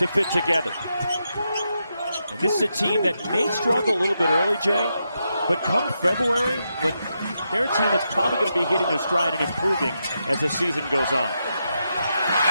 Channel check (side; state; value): both; inverted; correlation -0.84